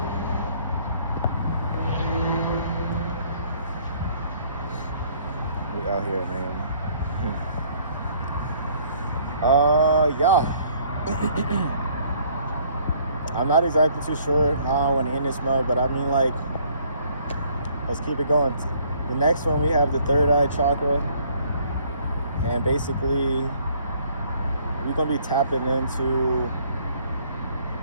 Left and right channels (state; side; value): inverted; both; correlation -0.61